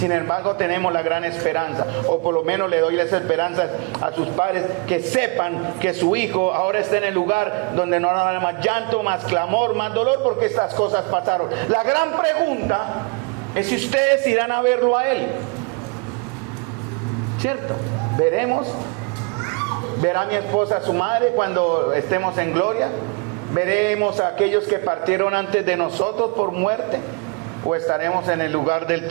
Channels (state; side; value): quieter; left; 31.8 dB